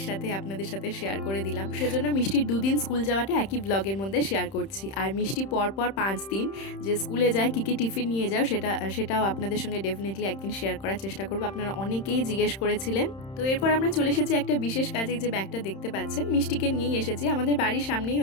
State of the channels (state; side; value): late; right; 31 ms